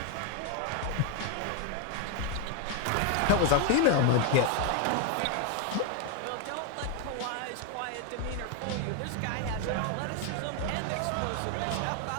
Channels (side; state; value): both; different; correlation 0.01